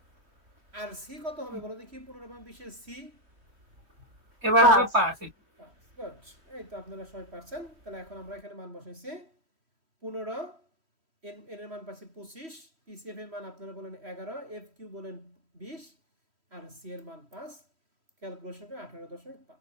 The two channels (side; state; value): left; late; 3.1 ms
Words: আর সি কত হবে বলো দেখি? 15 এবং 20 এর সি এবার হবে 5। গুড, এই তো আপনারা সবাই পারছেন। তাহলে এখন আমরা এখানে মান বসাইছি 15, এন এর মান পাচ্ছি 25, পিসিএফ এর মান আপনারা বলেন 11, এফ কিউ বলেন 20, আর সি এর মান 5। ক্যালকুলেশন করে